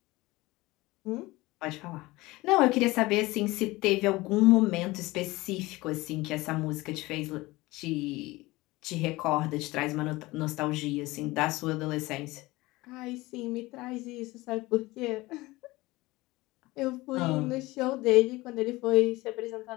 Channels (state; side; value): quieter; right; 20.5 dB